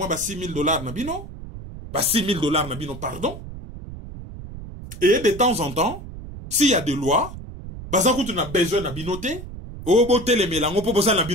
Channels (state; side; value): noise; right; rumble, 12 dB below the sound